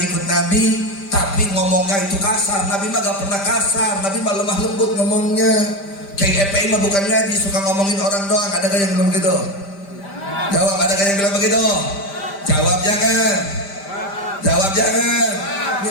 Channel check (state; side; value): late; right; 5.1 ms